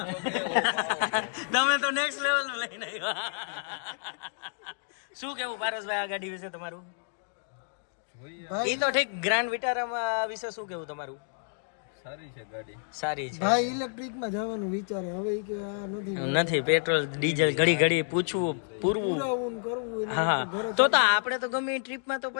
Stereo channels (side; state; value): right; silent; digital silence